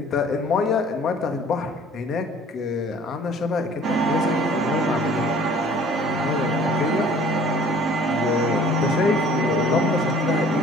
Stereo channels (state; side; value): normal; both; correlation 0.52